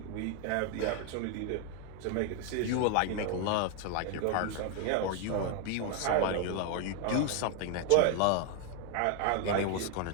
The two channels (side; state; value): both; different; correlation 0.00